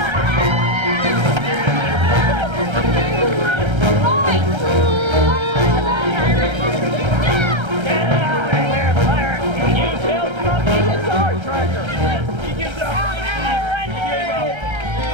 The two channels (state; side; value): late; left; 1.3 ms